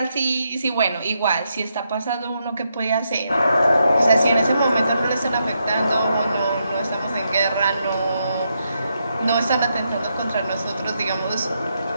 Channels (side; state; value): both; inverted; correlation -0.81